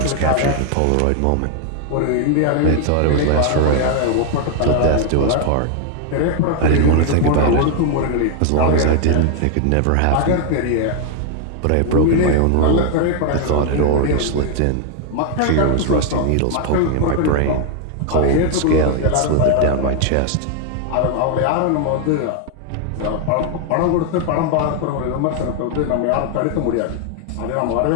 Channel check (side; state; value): both; different; correlation 0.00